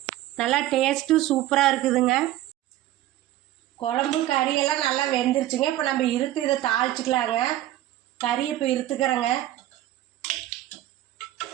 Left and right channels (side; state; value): left; quieter; 14.3 dB